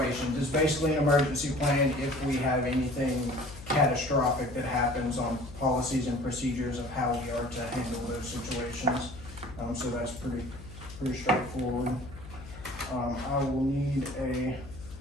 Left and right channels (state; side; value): noise; left; hum, 15 dB below the sound